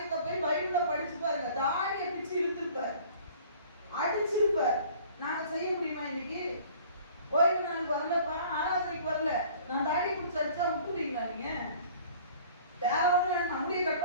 போய் பைபிள்ல படிச்சு பாருங்க. தாடியை பிச்சு இழுத்திருப்பார், அடிச்சிருப்பார். நாங்க செய்ய முடியுமா இன்னைக்கு? ஓய்வு நாளுக்கு வரலப்பா, ஆராதனைக்கு வரல, நான் தாடி பிடிச்சி அடிச்சா விட்டுருவீங்களா? நீங்க வேற ஒண்ணு நம்முடைய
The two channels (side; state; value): both; inverted; correlation -0.50